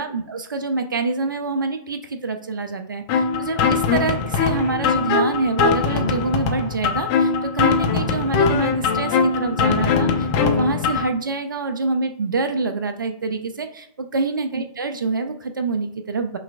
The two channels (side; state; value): both; inverted; correlation -0.34